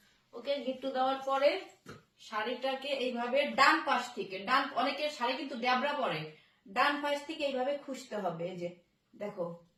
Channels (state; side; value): identical; both; correlation 1.00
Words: ওকে, গিট্টু দেওয়ার পরে শাড়িটাকে এইভাবে ডান পাশ থেকে, অনেকের শাড়ি কিন্তু ড্যাবরা পরে, ডান পাশ থেকে এইভাবে খুঁজতে হবে। এই যে দেখো,